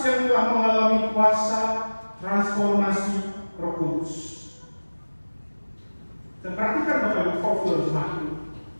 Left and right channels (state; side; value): inverted; both; correlation -1.00